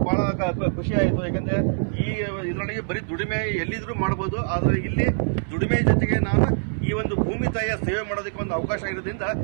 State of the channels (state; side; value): silent; left; 62 dB below the other